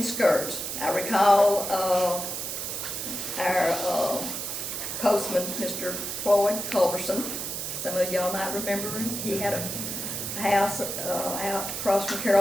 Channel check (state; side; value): noise; right; hiss, 4 dB below the sound